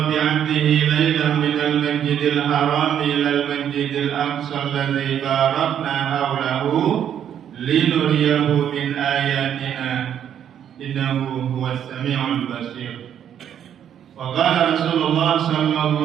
bi 'abdihi laylan minal masjidil haram ilal masjidil aqsa alladzi barakna hawlahu linuriyahu min ayatina innahu huwas sami'ul basir. Wa qala Rasulullah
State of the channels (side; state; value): left; quieter; 9.4 dB